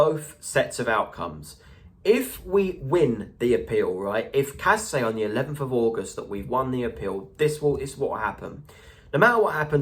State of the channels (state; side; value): identical; both; correlation 1.00